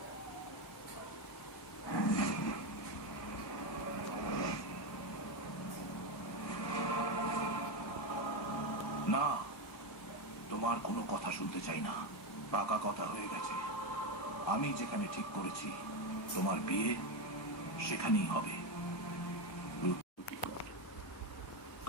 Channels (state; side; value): late; right; 1.2 ms